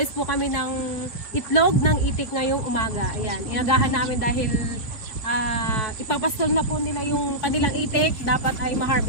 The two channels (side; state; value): right; late; 4.9 ms